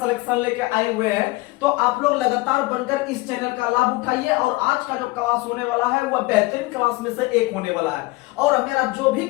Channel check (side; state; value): right; quieter; 22.2 dB